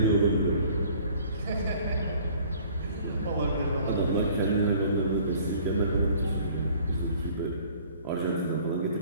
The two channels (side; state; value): both; inverted; correlation -0.53